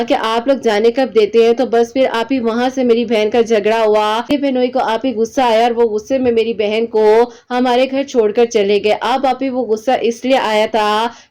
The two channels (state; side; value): identical; both; correlation 1.00